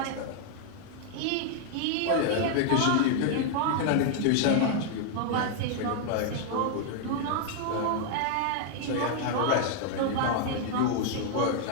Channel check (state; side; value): different; both; correlation 0.00